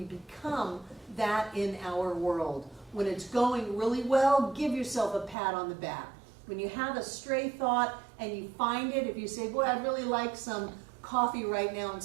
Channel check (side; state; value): left; drops out; at 5.4 s